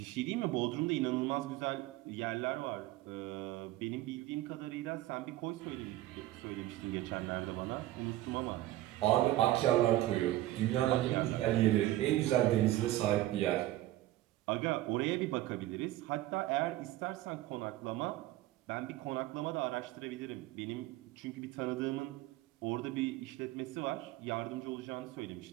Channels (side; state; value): left; quieter; 15.5 dB